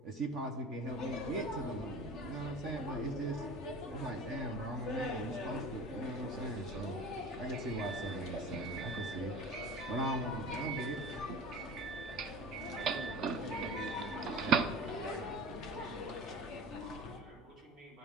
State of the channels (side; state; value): both; normal; correlation 0.37